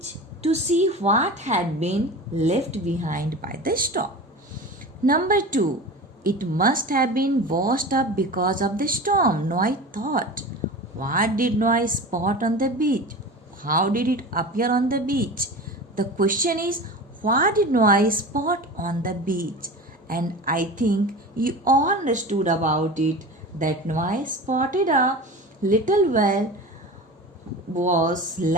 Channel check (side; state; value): both; normal; correlation 0.32